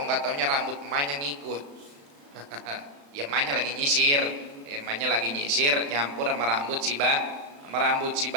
nggak taunya rambut emaknya ngikut. Ya, emaknya lagi nyisir, nyampur sama rambut si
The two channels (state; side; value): late; left; 35 ms